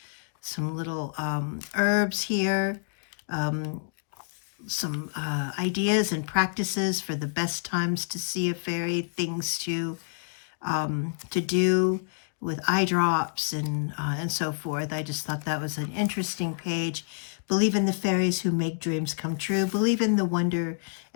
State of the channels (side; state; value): right; silent; digital silence